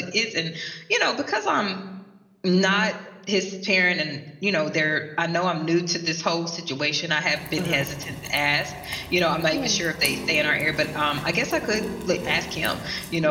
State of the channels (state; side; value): identical; both; correlation 1.00